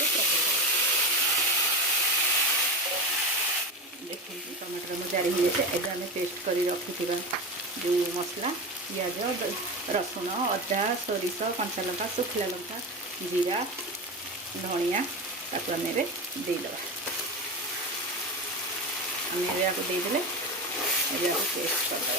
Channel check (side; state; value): both; normal; correlation 0.22